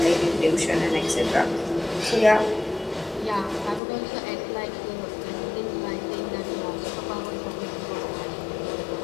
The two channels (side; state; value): right; drops out; at 3.8 s